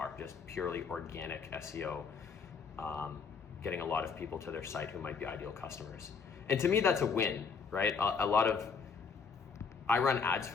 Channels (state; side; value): quieter; right; 5.7 dB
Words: just purely organic SEO, getting a lot of people to their site who might be ideal customers. And to me, that's a win, right? I run ads